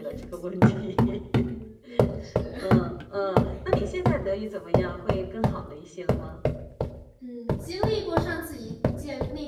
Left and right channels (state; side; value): identical; both; correlation 1.00